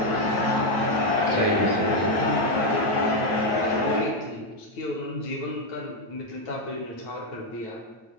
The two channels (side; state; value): right; late; 9.1 ms